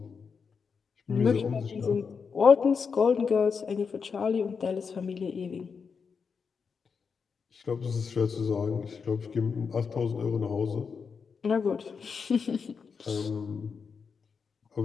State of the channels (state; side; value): quieter; right; 5.7 dB